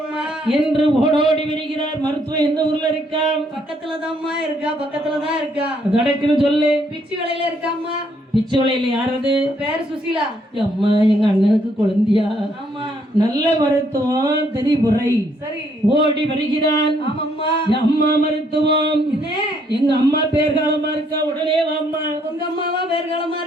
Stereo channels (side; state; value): both; normal; correlation 0.70